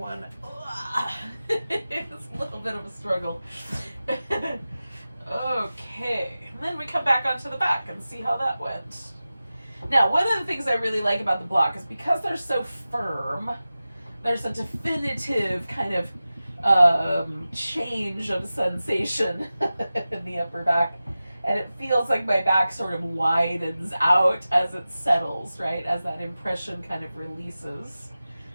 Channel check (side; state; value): both; inverted; correlation -0.95